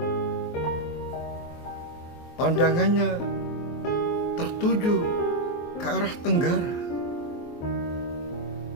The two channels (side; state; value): right; late; 23 ms